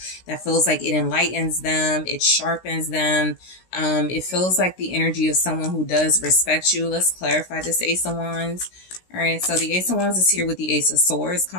that feels like it enlightens them. It sharpens them. It feels like the energy of someone who does respect you. Let's clarify this Ace of Wands. All right, so the Ace of Wands is here with the Ace of Swords,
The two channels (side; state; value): right; late; 16 ms